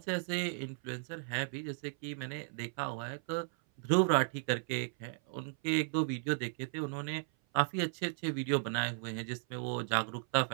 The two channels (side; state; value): left; silent; 54 dB below the other